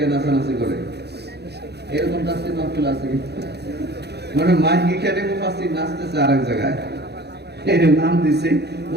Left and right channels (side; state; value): left; late; 0.48 ms